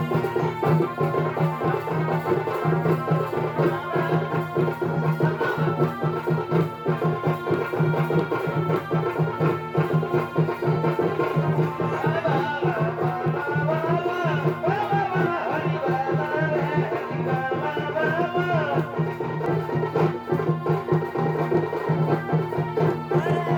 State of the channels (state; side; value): identical; both; correlation 1.00